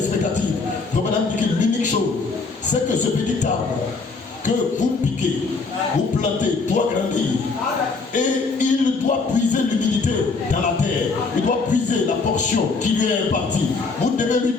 comme madame dit que l'unique chose, c'est que ce petit arbre que vous piquez, vous plantez, doit grandir. Et il doit puiser l'humidité dans la terre. Il doit puiser la portion qui lui est impartie. Vous devez lui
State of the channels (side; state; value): right; quieter; 4.2 dB